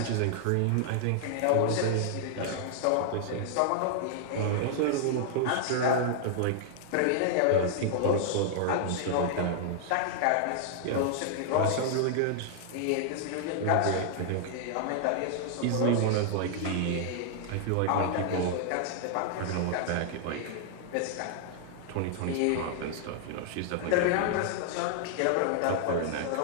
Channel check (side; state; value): both; different; correlation -0.01